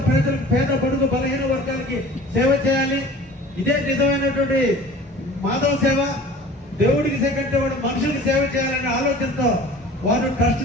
ప్రజలకు, పేద బడుగు బలహీన వర్గాలకి సేవ చేయాలి. ఇదే నిజమైనటువంటి మాధవ సేవ. దేవుడికి సెకండ్ వాడు మనుషులకు సేవ చేయాలనే ఆలోచనతో వారు ట్రస్ట్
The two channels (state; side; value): normal; both; correlation 0.44